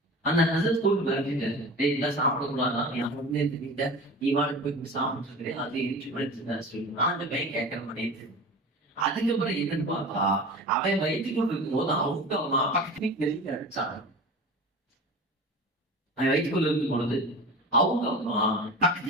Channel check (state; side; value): normal; both; correlation 0.34